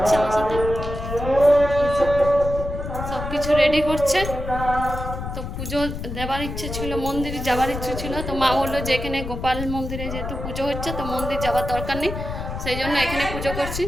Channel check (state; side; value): noise; left; rumble, 6 dB below the sound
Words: আমার সাথে, সব কিছু রেডি করছে। তো পুজো দেবার ইচ্ছে ছিল, মন্দিরে যাবার ইচ্ছে ছিল, তো মা বললো যে এখানে গোপাল মন্দিরে যেহেতু পুজো হচ্ছে তো মন্দির যাওয়ার দরকার নেই, সেই জন্য এখানে পুজো করছি।